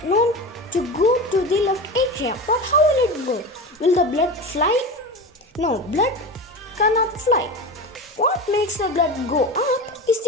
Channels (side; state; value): both; normal; correlation 0.28